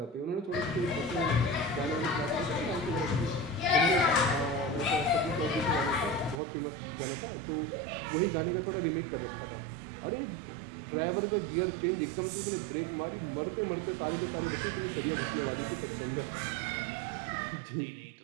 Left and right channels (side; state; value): left; drops out; at 6.4 s